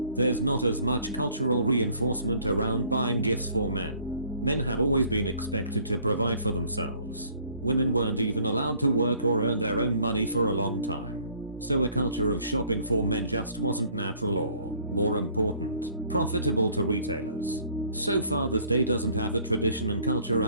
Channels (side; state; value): both; inverted; correlation -0.58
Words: there's not as much cultural reinforcement around buying gifts for men. Men have always been expected to provide for themselves. Women weren't even allowed to work or earn their own money for a long time. So a culture of shopping for men just wasn't natural or, more important, profitable to retailers. So Father's Day doesn't have the tradition and culture